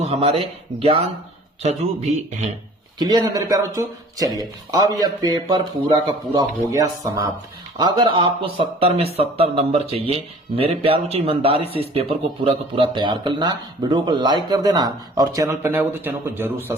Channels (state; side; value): normal; both; correlation 0.49